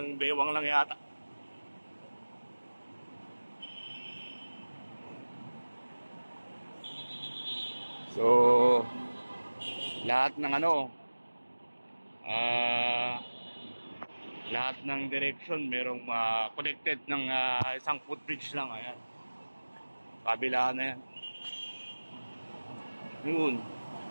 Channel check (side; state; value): both; inverted; correlation -1.00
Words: bewang lang yata. So lahat ng lahat ng direction merong connected ng isang footbridge lang. Ayan, kabila na yan. Yun.